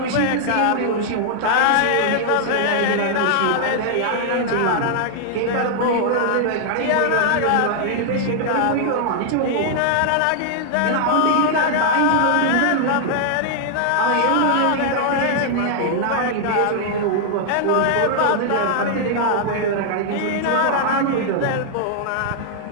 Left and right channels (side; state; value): both; different; correlation 0.00